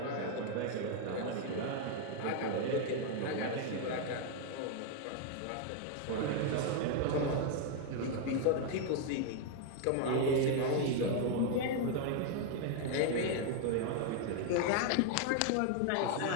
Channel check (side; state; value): both; different; correlation 0.00